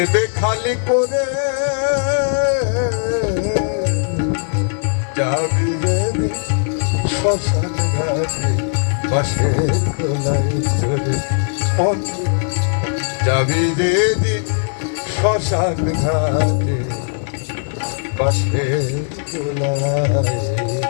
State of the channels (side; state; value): right; silent; digital silence